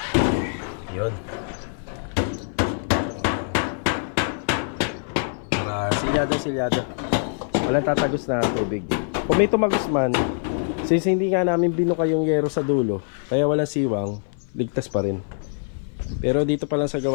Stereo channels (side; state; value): right; silent; 56 dB below the other